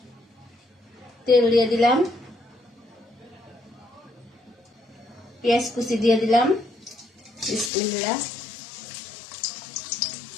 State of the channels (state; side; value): drops out; right; at 7.7 s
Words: তেল দিয়ে দিলাম, পেঁয়াজ কুচি দিয়ে দিলাম। বিসমিল্লাহ।